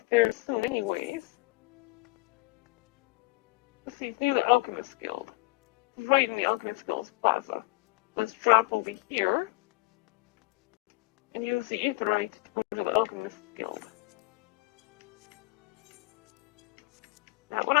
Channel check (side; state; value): right; quieter; 21.8 dB